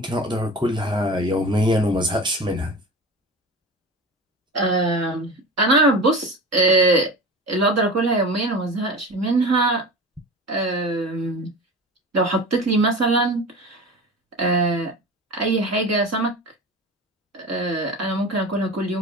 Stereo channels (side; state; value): both; normal; correlation 0.33